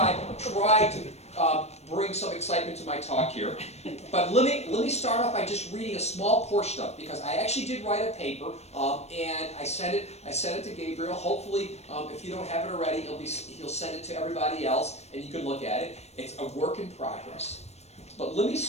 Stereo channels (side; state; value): right; late; 0.31 ms